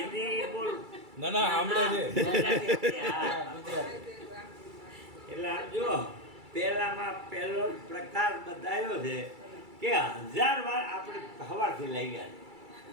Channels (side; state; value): left; late; 2.3 ms